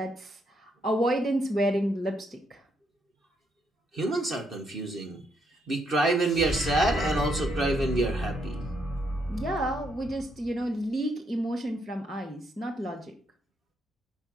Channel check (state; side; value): normal; both; correlation 0.75